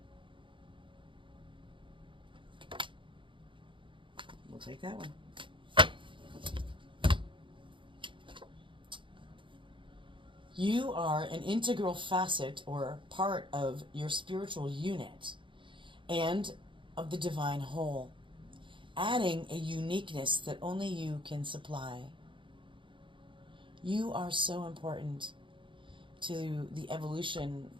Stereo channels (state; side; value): late; left; 0.24 ms